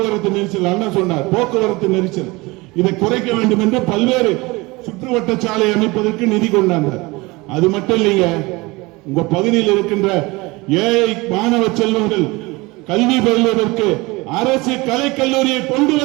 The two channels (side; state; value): left; quieter; 23.3 dB